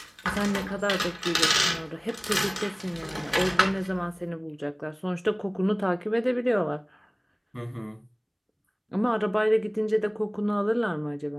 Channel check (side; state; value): both; identical; correlation 1.00